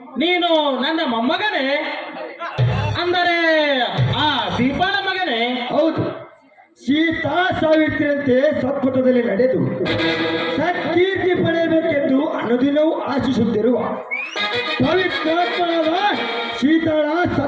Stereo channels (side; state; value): both; identical; correlation 1.00